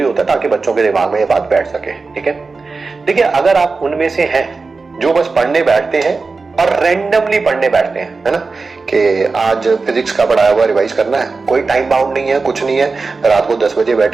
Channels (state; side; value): quieter; left; 4.1 dB